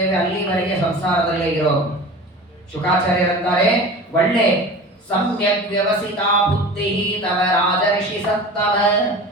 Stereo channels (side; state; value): both; normal; correlation 0.36